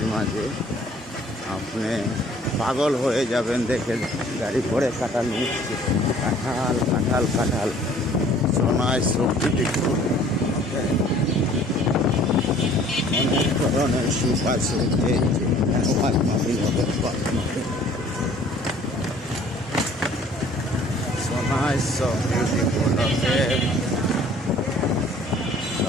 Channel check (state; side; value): normal; both; correlation 0.54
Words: মাঝে। আপনি পাগল হয়ে যাবেন দেখে। গাড়ি করে কাঁঠাল নিচ্ছে, কাঁঠাল কাঁঠাল কাঁঠাল, সোনায় সবজি দেখুন। অনেক ধরনের সুপ আছে, সোনায় সব বিউটিফুল।